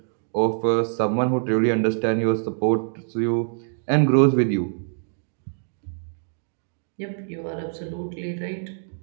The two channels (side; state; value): left; silent; digital silence